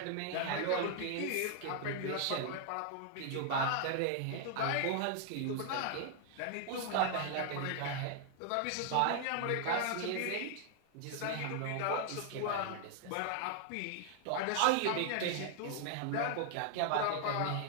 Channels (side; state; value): both; different; correlation 0.00